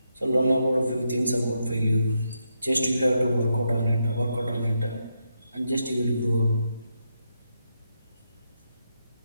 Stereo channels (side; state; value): both; inverted; correlation -0.82